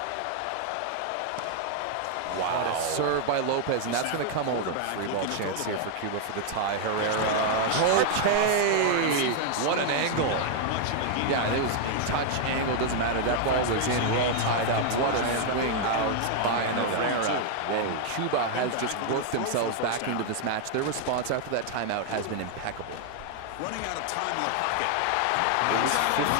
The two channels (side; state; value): both; different; correlation 0.00